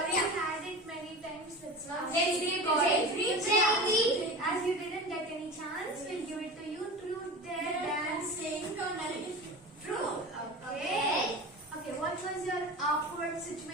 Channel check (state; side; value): normal; both; correlation 0.31